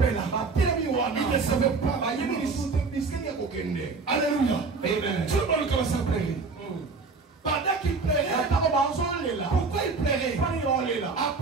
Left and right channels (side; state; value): left; quieter; 4.3 dB